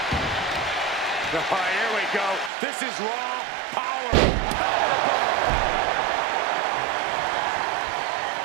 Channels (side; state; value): left; drops out; at 2.5 s